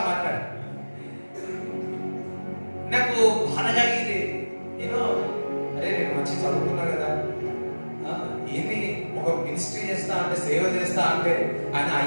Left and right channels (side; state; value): both; inverted; correlation -1.00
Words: మాట్లాడు. నాకు బాధ కలిగింది. అరే నేను మంచి చదువుకున్నా కదా, ఏంది ఒక మినిస్ట్రీ చేస్తా అంటే, సేవ చేస్తా అంటే ఆయన